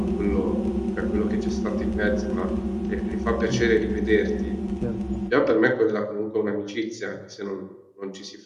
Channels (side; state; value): both; identical; correlation 1.00